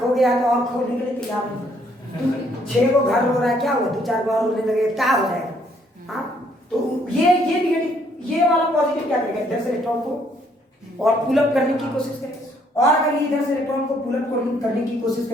गया तो और खोने के लिए तैयार नहीं। 6 को घर हो रहा है, क्या हुआ 2-4 बार रोने लगे क्या हो जाएगा? हाँ तो ये निगेटिव, ये वाला पॉजिटिव क्या करेगा? इधर से इलेक्ट्रॉन को और पुल अप करने की कोशिश करेगा। और अगर ये इधर से इलेक्ट्रॉन को पुल अप करने की कोशिश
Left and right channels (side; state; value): both; normal; correlation 0.67